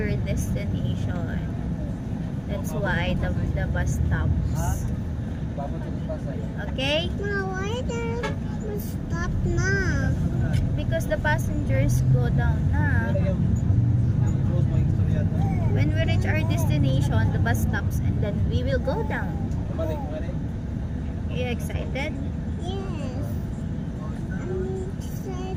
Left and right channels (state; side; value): identical; both; correlation 1.00